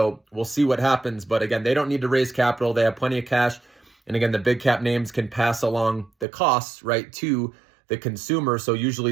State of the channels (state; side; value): drops out; left; at 6.2 s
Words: we'll see what happens. But again, they don't need to raise capital. They have plenty of cash. And again, the big cap names can pass along the costs, right, to the consumer. So